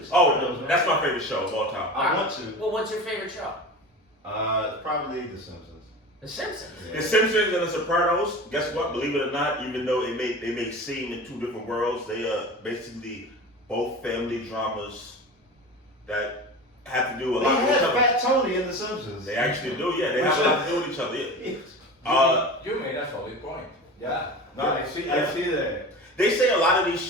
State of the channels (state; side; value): normal; both; correlation 0.32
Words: Oh, Sopranos, man. that's my favorite show of all time. I want to. Well, what's your favorite show? Probably The Simpsons. The Simpsons. The Simpsons and The Sopranos. Guess what? Believe it or not, even though they may seem in 2 different worlds, they are basically both family dramas that have to do a They lot with had each other. Fat Tony in The Simpsons. They actually do, yeah. They have a lot to do with each other. Yeah. You made a solid point. Yeah. No, Yeah. I see that. They say a lot of these